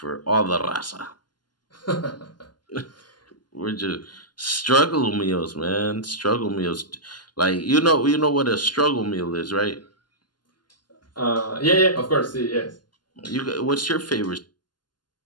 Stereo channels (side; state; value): right; late; 0.71 ms